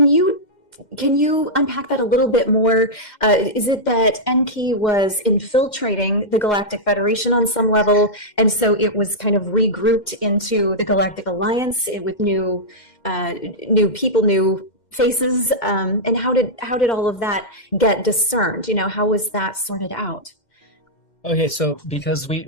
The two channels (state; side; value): late; right; 2.1 ms